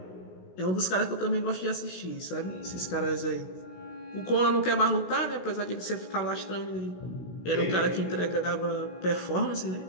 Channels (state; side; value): late; right; 16 ms